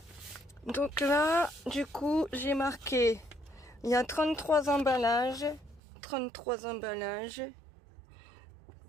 Donc là, du coup, j'ai marqué, il y a 33 emballages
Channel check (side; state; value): left; drops out; at 5.8 s